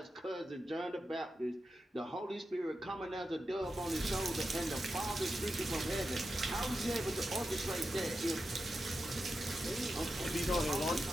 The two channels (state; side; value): normal; both; correlation 0.90